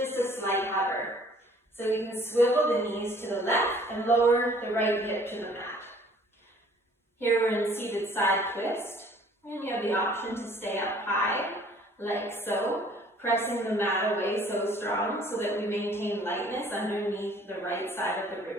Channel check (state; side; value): normal; both; correlation 0.55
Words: a slight hover. So you can swivel the knees to the left and lower the right hip to the mat. Here we're in seated side twist, and you have the option to stay up high, like so, pressing the mat away so strong so that we maintain lightness underneath the right side of the